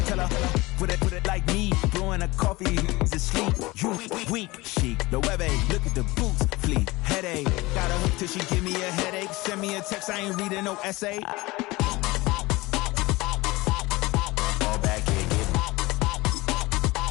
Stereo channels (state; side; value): quieter; right; 21.3 dB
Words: Tell her, put it like me. Blowing a coffee, to sleep. You weak, chic. The web look at the boots, fleet. Headache. Got a hook till she give me a headache. Send me a text, I ain't reading no essay.